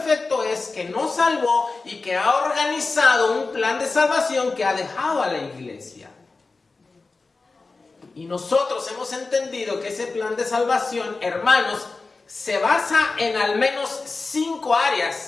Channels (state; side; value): quieter; right; 3.8 dB